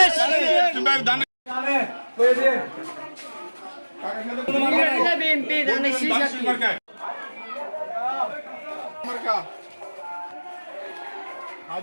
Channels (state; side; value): inverted; both; correlation -1.00